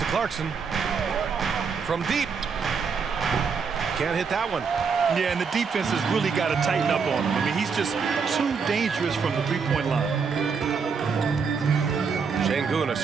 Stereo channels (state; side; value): quieter; left; 5.6 dB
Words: Clarkson. From deep. Can't hit that one. Yeah, and the defense has really got to tighten up on him. I mean, he's just too dangerous from the three-point line. Şengün, a